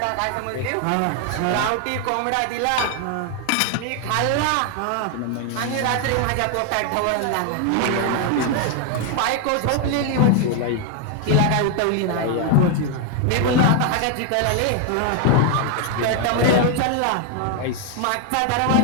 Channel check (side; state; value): both; different; correlation 0.01